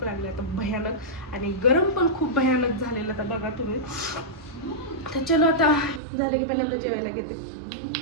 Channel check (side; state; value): left; drops out; at 6.0 s